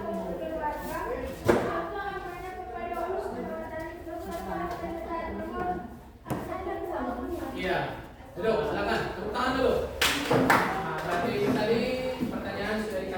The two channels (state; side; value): identical; both; correlation 1.00